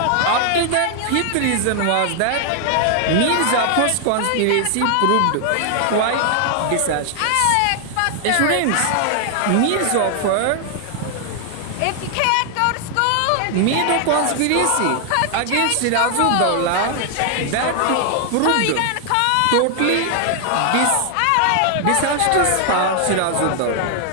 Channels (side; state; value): both; different; correlation 0.00